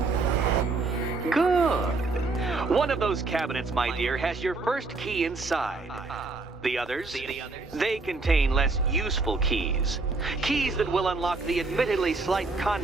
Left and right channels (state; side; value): quieter; left; 3.7 dB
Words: Good. One of those cabinets, my dear, has your first key inside. The others? They contain less useful keys. Keys that will unlock the admittedly slight